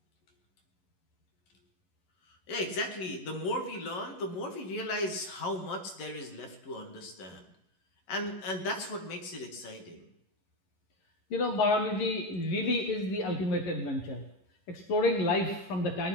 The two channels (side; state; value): right; late; 11 ms